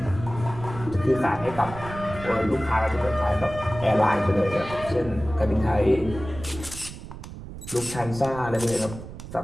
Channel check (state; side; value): noise; right; rumble, 12 dB below the sound